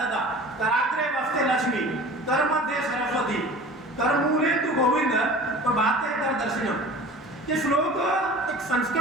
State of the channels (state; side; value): normal; both; correlation 0.41